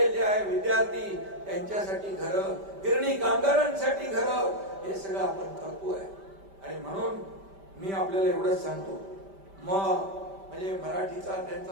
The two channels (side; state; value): left; late; 5.1 ms